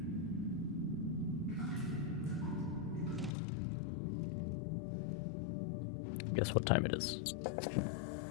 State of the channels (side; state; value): right; drops out; at 3.3 s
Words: Guess what time it is?